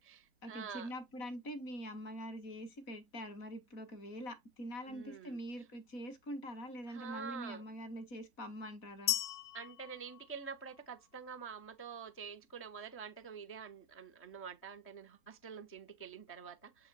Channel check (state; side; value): late; right; 4.4 ms